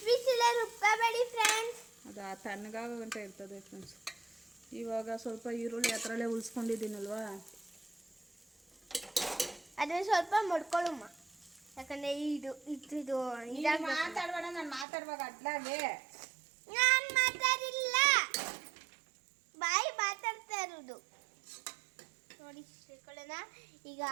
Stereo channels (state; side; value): drops out; left; at 14.9 s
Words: ಬಿಸಿಲೇ ರುಬ್ಕೋಬೇಡಿ ಫ್ರೆಂಡ್ಸ್. ಅದು ತಣ್ಣಗಾಗಂತ ಇರ್ತದೆ ಫ್ರೆಂಡ್ಸ್. ಇವಾಗ ಸ್ವಲ್ಪ ಈರುಳ್ಳಿ ಹತ್ರಲ್ಲೇ ಉಳಿಸ್ಕೊಂಡಿದ್ದೀನಲ್ವಾ, ಅದನ್ನ ಸ್ವಲ್ಪ ಮಡ್ಕೊಳ್ಳಮ್ಮ. ಯಾಕಂದ್ರೆ ಇದು ಮಾತಾಡ್ಬೇಡ. ನಾನು ಮಾತಾಡುವಾಗ ಅಡ್ಲಾಗೆ ನಾನು ಮಾತಾಡಿಲ್ಲ, ಬಾಯಿ ಮಾತಾಡ್ತಾ ಇರೋದು ನೋಡಿ. ಸೇರ್ಕೊಳ್ಳೋಣ ಈಗ.